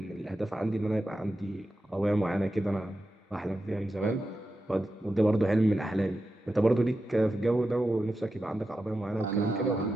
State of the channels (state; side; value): normal; both; correlation 0.90